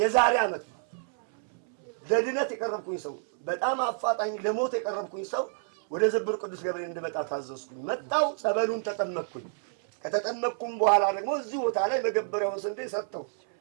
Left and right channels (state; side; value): silent; left; 59 dB below the other